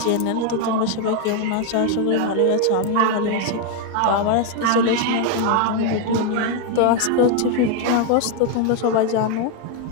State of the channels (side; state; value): both; different; correlation 0.01